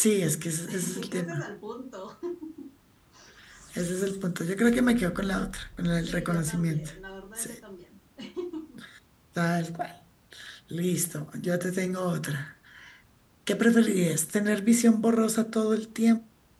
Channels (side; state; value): both; identical; correlation 1.00